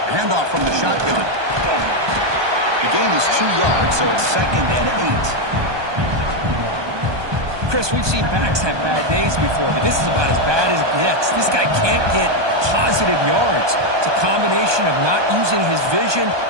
Handoff from the shotgun. The gain is 2 yards, so it's 2nd and 8. Chris, we've seen backs have bad days before, but this is about as bad as it gets. This guy can't get positive yards. It's a combination of not using his vision,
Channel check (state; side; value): late; left; 1.2 ms